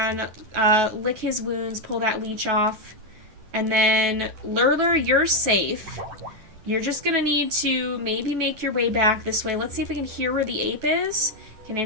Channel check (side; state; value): left; late; 10 ms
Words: lick his wounds, pull that leech off. And then, Lurlur, you're safe. You're just going to need to maybe make your way back this way. Let's see if we can hear where the ape is. Can